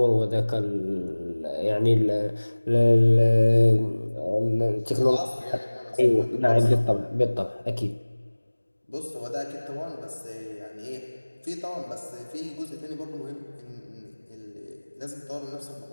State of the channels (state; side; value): inverted; both; correlation -1.00